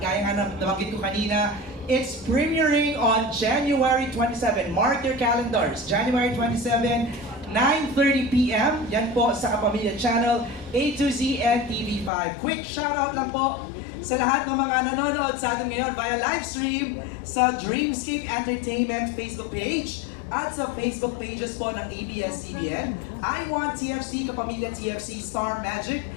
nga nabanggit ko kanina, it's premiering on January 27. Mark your calendars, January 27, 9:30 p.m. Yan po sa Kapamilya Channel A to Z and TV5. Quick shoutout lang po sa lahat ng mga nanonood sa atin ngayon via live stream sa Dreamscape Entertainment Facebook page at sa Facebook pages po ng ABS-CBN, I Want TFC, Kapamilya TFC, Star Magic,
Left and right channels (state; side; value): drops out; right; at 12.1 s